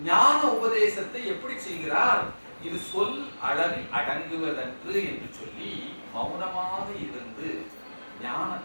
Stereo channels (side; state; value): both; inverted; correlation -1.00